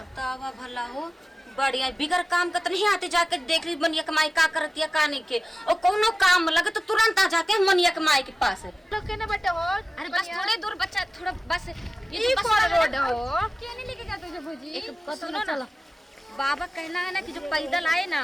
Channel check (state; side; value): normal; both; correlation 0.96